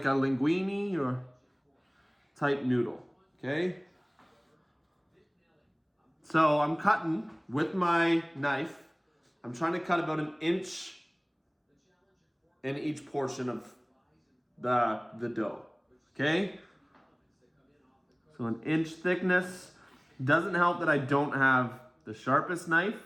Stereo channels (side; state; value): both; identical; correlation 1.00